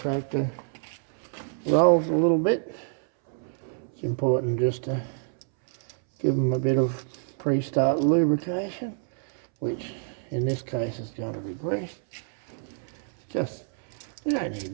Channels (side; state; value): left; silent; 60 dB below the other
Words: rolls a little bit, it's important just to give them a bit of pre-start lubrication, which in this case is going to be grease. You don't